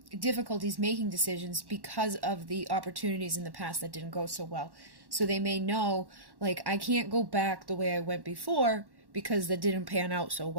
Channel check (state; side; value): late; left; 1.1 ms